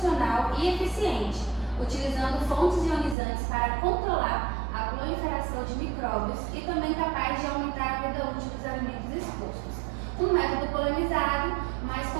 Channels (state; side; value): drops out; left; at 3.2 s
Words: e eficiente, utilizando fontes ionizantes para controlar a proliferação de micróbios e também capaz de aumentar a vida útil dos alimentos expostos. Um método polemizado, mas